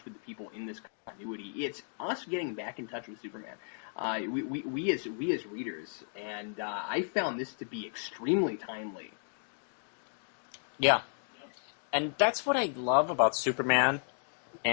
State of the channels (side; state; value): right; silent; digital silence